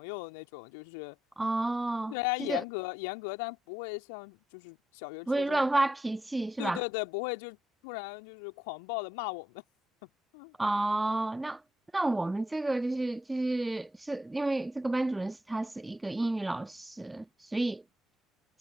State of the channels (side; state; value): both; normal; correlation 0.81